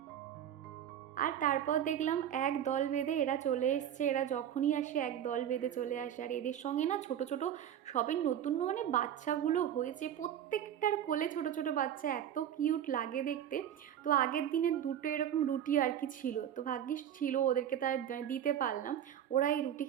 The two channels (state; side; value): quieter; left; 10.1 dB